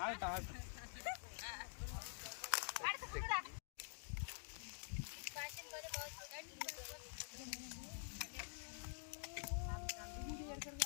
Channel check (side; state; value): right; silent; digital silence